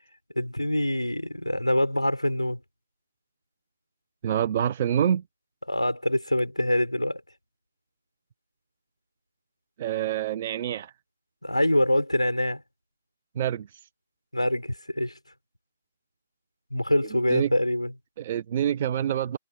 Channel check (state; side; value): inverted; both; correlation -0.85